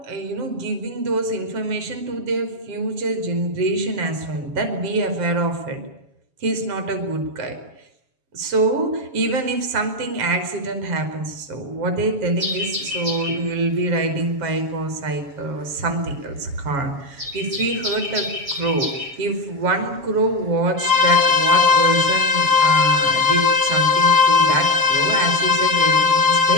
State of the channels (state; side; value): late; left; 7.3 ms